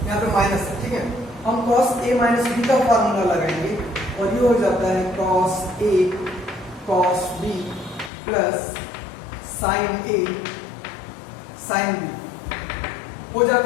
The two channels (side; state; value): right; drops out; at 8.1 s